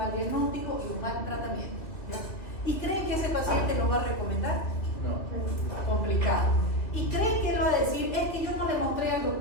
diagnóstico y un mal tratamiento. ¿Ya? ¿Y creen que ese paciente lo va a recomendar? No. Complicado. ¿Y creen que él va a decir, es que yo no le mostré al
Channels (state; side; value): late; right; 2.5 ms